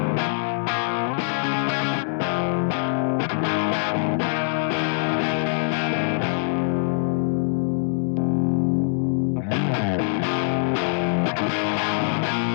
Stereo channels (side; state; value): right; silent; digital silence